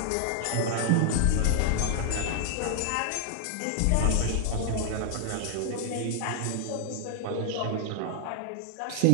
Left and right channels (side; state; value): both; different; correlation 0.00